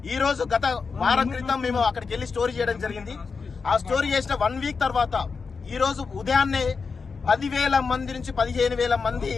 ఈ రోజు గత వారం క్రితం మేము అక్కడికి వెళ్లి స్టోరీ చేయడం జరిగింది. ఆ స్టోరీ చేసిన 1 వీక్ తర్వాత ఈ రోజు ఉదయాన్నే 10,000 మంది నుంచి 15,000 మంది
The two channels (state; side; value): quieter; right; 5.0 dB